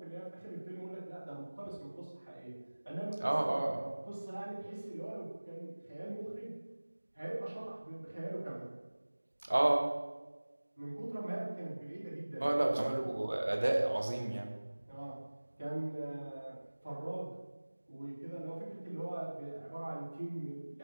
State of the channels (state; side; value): inverted; both; correlation -1.00